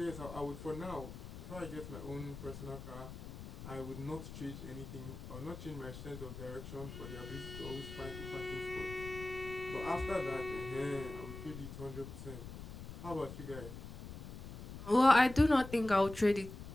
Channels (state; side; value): noise; left; rumble, 11 dB below the sound